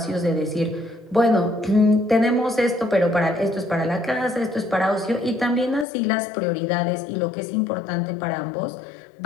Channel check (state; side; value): drops out; right; at 5.9 s